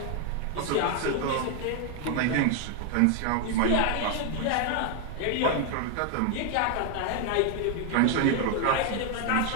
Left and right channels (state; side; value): different; both; correlation 0.00